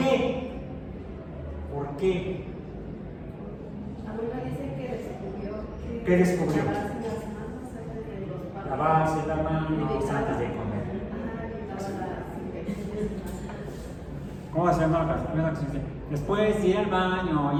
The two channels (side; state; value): both; identical; correlation 1.00